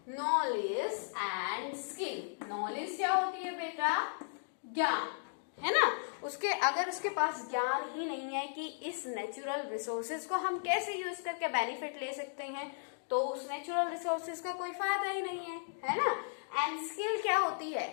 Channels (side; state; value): right; silent; digital silence